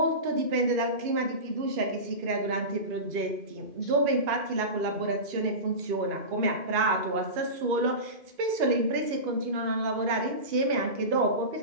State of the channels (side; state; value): left; late; 2.5 ms